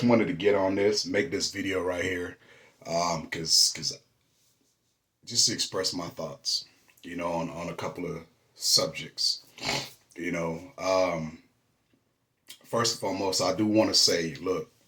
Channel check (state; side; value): identical; both; correlation 1.00